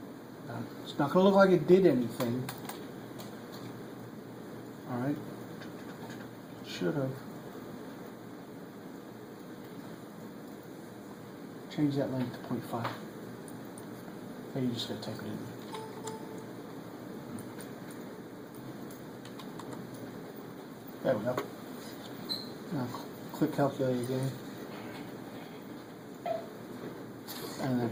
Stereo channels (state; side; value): identical; both; correlation 1.00